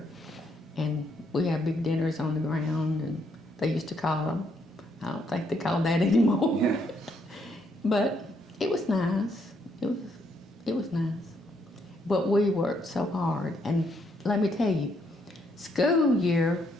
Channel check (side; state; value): both; normal; correlation 0.73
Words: And we had big dinners on the ground, and they used to call them. I don't think they call that anymore. Yeah. But it was nice. It was nice. But we worked so hard. And let me tell you, school year